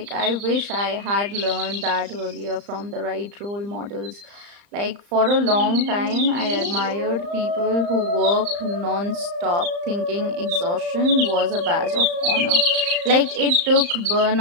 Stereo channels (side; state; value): left; late; 35 ms